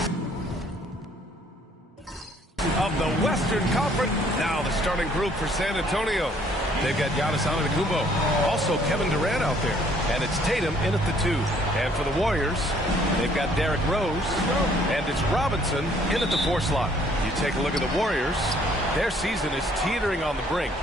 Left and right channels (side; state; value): both; normal; correlation 0.62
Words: of the Western Conference. Now the starting group for San Antonio. They've got Giannis Antetokounmpo, also Kevin Durant out there, and it's Tatum in at the 2. And for the Warriors, they've got Derrick Rose, and it's Robinson in at the 4 slot. You take a look at the Warriors, their season is teetering on the brink,